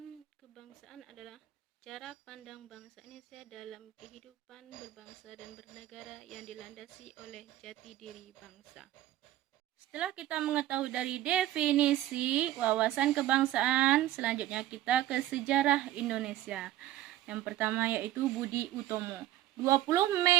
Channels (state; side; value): quieter; left; 14.2 dB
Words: kebangsaan adalah cara pandang bangsa Indonesia dalam kehidupan berbangsa dan bernegara yang dilandasi oleh jati diri bangsa. Setelah kita mengetahui dari definisi wawasan kebangsaan, selanjutnya kita ke sejarah Indonesia. Yang pertama yaitu Budi Utomo. 20